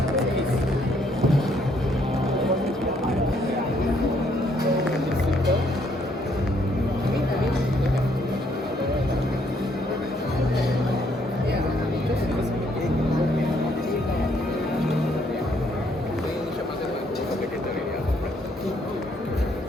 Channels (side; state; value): both; normal; correlation 0.69